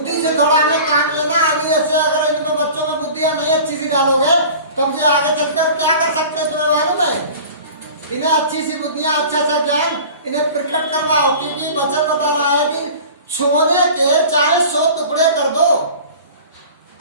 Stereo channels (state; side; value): inverted; both; correlation -0.40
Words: से थोड़ा हमें काम लेना। अभी ऐसे अगर इनमें बच्चों में बुद्धियां नहीं अच्छी सी डालोगे, तब ये आगे चलकर क्या कर सकते हैं तुम्हें मालूम है? इन्हें अच्छी सी बुद्धियां, अच्छा ज्ञान इन्हें प्रकट करवाओ, क्योंकि वचन बता रहा है कि सोने के चाहे 100 टुकड़े कर दो,